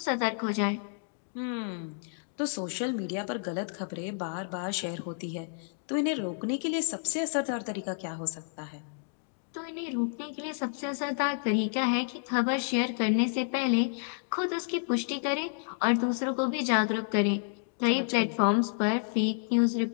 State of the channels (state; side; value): silent; right; digital silence